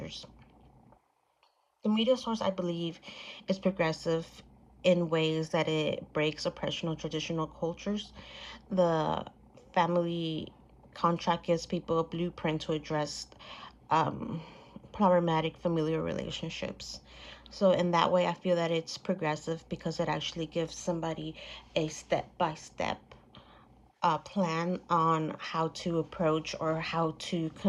The media source, I believe, is progressive in ways that it breaks oppression of traditional cultures. The family contract gives people a blueprint to address um, problematic familial relationships. So, in that way, I feel that it's progressive because it actually gives somebody a step by step plan on how to approach or how to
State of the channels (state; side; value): identical; both; correlation 1.00